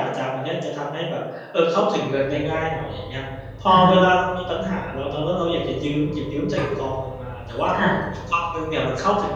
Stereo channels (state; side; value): identical; both; correlation 1.00